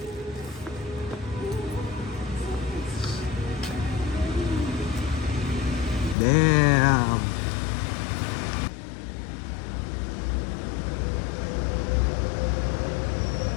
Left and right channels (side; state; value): right; drops out; at 6.2 s